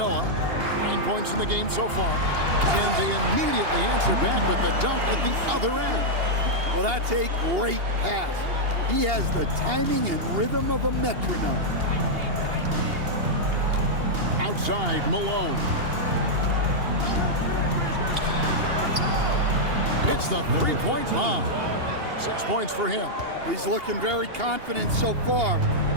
9 points in the game so far. And they immediately answer back with the dunk at the other end. Well, that's a great pass. He has the timing and rhythm of a metronome. Outside, Malone. Hits the three-point bomb. 6 points for him. He's looking very confident so far.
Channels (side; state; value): left; late; 2.8 ms